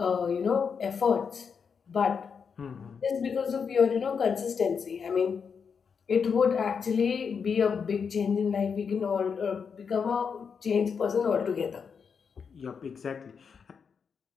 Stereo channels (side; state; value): right; quieter; 6.2 dB